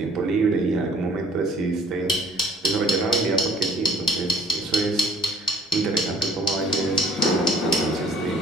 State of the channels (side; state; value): both; normal; correlation 0.54